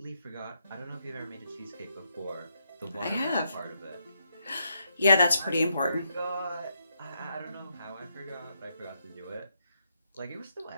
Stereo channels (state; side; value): inverted; both; correlation -0.79